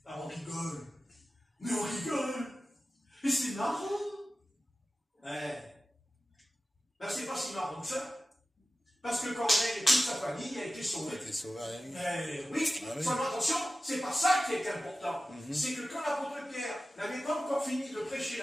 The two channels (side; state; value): both; normal; correlation 0.95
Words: Alors on rigole. Mais on rigole. Et c'est marrant. Ben, c'est pas si marrant que ça. Parce que Corneille et toute sa famille a été sauvée. Oui, seulement attention, c'est pas ça qui est important. C'est que quand l'apôtre Pierre n'avait pas encore fini de prêcher